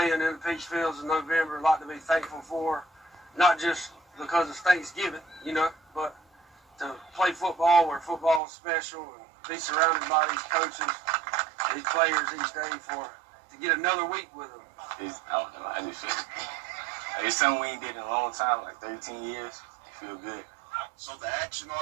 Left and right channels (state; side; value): drops out; left; at 8.4 s